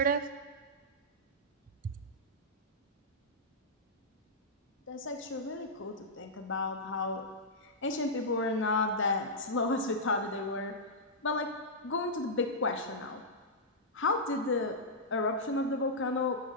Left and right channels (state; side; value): normal; both; correlation -0.10